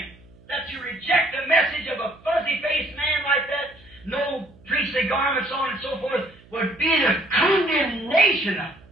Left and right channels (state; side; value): noise; right; hum, 26 dB below the sound